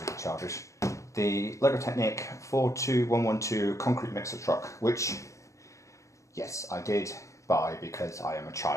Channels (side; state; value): right; late; 0.15 ms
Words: really childish, the Lego Technic 42112 concrete mixer truck, which, yes, I did buy because I am a